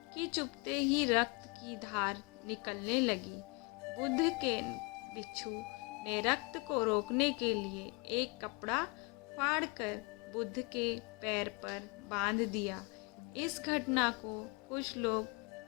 कि चुभते ही रक्त की धार निकलने लगी। बुद्ध के भिक्षु ने रक्त को रोकने के लिए एक कपड़ा फाड़कर बुद्ध के पैर पर बांध दिया। इस घटना को कुछ लोग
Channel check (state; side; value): quieter; right; 30.1 dB